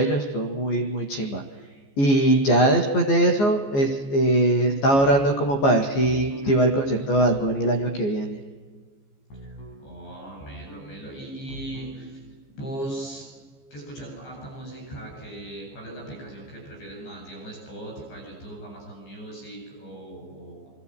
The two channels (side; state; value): right; late; 14 ms